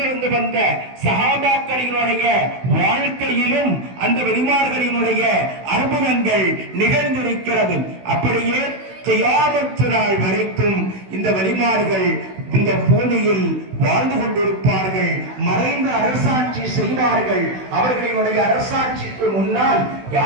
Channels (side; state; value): left; late; 16 ms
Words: வந்த சஹாபாக்களினுடைய வாழ்க்கையிலும் அந்த வலிமார்களினுடைய அற்புதங்கள் நிகழ்ந்திருக்கிறது. அப்படியே கியாமத்து நாள் வரைக்கும் இந்த வலிமார்கள் இந்த பூமியில் வாழ்ந்து கொண்டிருப்பார்கள். மறைந்த அரசாட்சி செய்வார்கள். அவர்களினுடைய அரசாட்சிக்கு முன்னால்